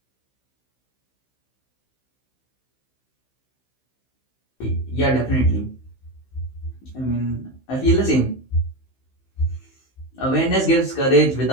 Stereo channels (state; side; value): late; right; 15 ms